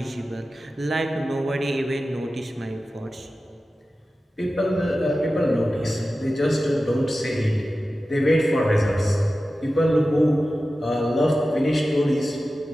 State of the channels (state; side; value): normal; both; correlation 0.94